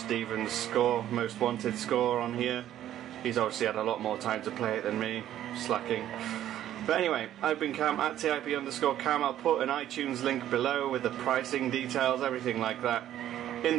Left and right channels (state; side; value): quieter; left; 12.0 dB